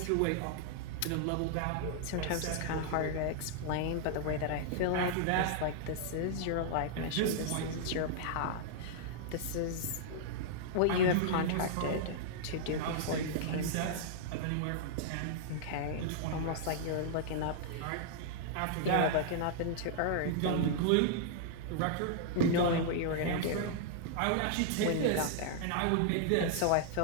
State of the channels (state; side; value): different; both; correlation -0.01